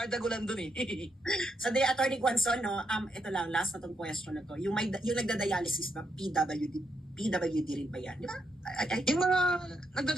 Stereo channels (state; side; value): normal; both; correlation 0.79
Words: Gulan doon Sa day, Attorney Gonzon, no, ito lang, last na tong question na to. Yung nagda-dialysis ba, PWD rin ba yan? Di ba? Yung mga